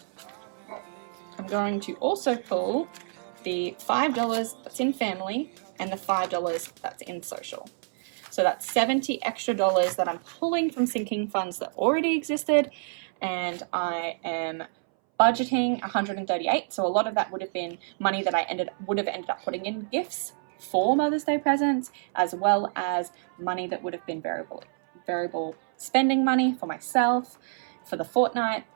I'm going to also pull the $5 that's in family and the $5 that's in social. So that's $70 extra that I'm pulling from sinking funds that already existed, and I am budgeting $138. So a lot of that would have been money that I would have ended up putting in gifts for Mother's Day presents, as well as money that would have been variable spending money for myself, for the fortnight,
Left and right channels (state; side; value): silent; left; 60 dB below the other